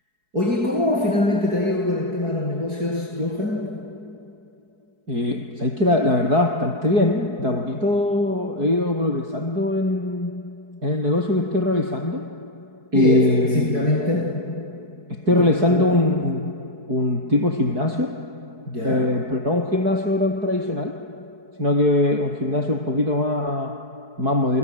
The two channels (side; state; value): left; late; 4.7 ms